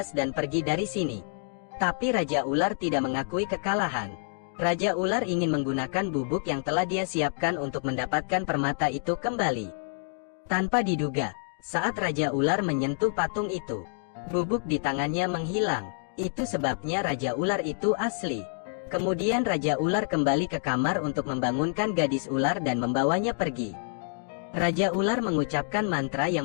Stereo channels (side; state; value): right; silent; digital silence